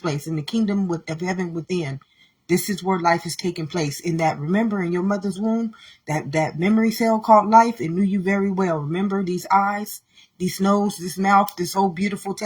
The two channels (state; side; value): identical; both; correlation 1.00